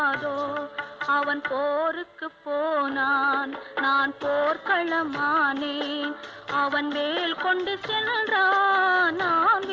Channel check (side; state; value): both; identical; correlation 1.00